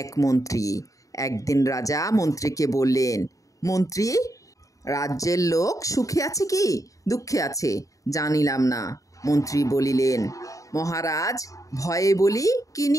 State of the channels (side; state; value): right; late; 0.16 ms